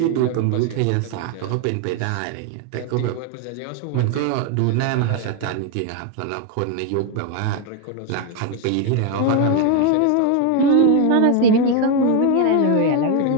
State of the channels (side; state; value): both; different; correlation 0.01